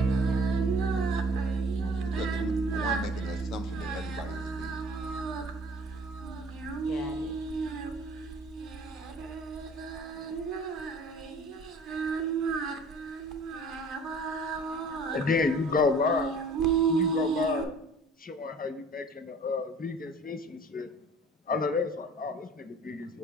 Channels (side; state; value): both; normal; correlation 0.49